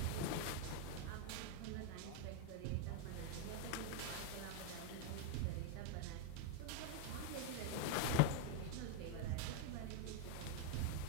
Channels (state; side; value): different; both; correlation 0.01